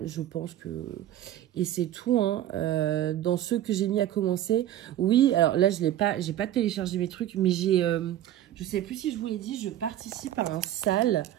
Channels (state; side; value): quieter; left; 12.4 dB